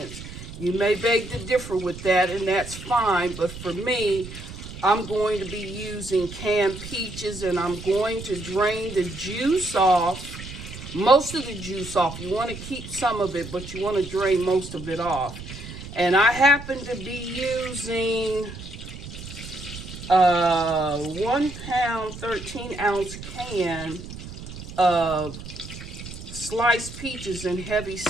You may beg to differ with that, and that's fine, but for me, I'm going to be using canned peaches, and I'm going to drain the juice off. Most of the juice off. You want to keep some of it, but you want to drain most of it off. And I happen to be using 1 pound, 13-ounce can of sliced peaches and heavy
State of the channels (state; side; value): noise; right; rumble, 12 dB below the sound